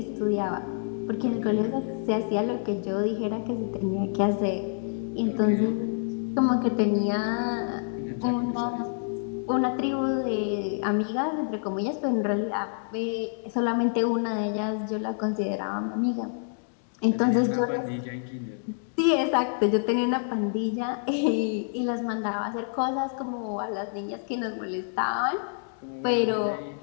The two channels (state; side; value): silent; right; digital silence